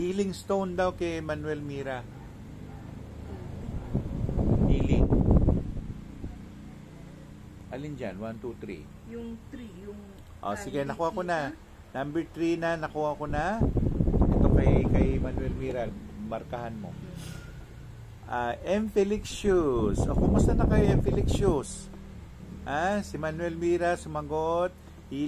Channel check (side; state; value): both; identical; correlation 1.00